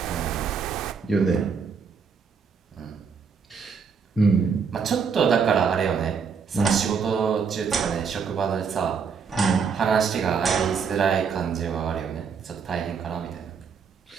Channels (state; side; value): quieter; left; 6.0 dB